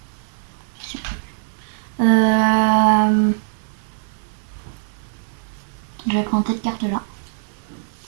Euh, je vais prendre cette carte-là.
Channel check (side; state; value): left; silent; 56 dB below the other